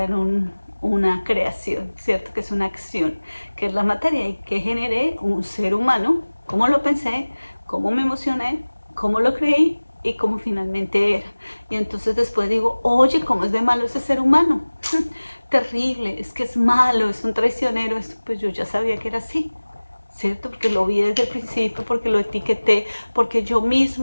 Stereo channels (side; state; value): both; inverted; correlation -1.00